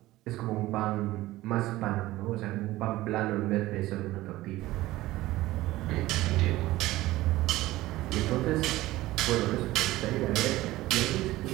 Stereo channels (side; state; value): left; quieter; 17.2 dB